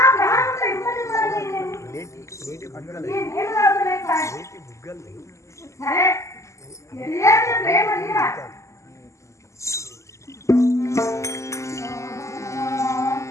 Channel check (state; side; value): late; right; 0.14 ms